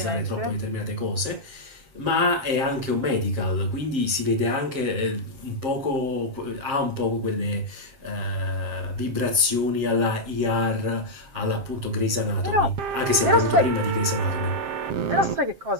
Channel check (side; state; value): left; late; 7.4 ms